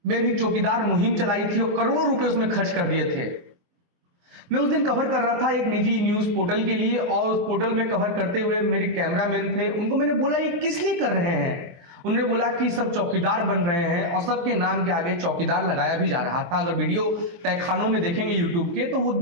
में भी चौकीदार मुहिम चलाई थी और करोड़ों रुपए उसमें खर्च कर दिए थे। मैं उस दिन कवर कर रहा था एक निजी न्यूज पोर्टल के लिए और उस पोर्टल में कवर करते हुए मेरे कैमरामैन थे। उनको मैंने बोला ये किस लिए कर रहे हैं? उन्होंने बोला कि सब चौकीदार बन रहे हैं और सबके नाम के आगे चौकीदार लगाया भी जा रहा था। अगर वीडियो तहखानों में देखेंगे यूट्यूब के तो वो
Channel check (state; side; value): late; left; 23 ms